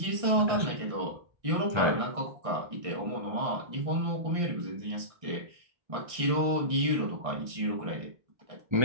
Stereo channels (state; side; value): late; left; 1.6 ms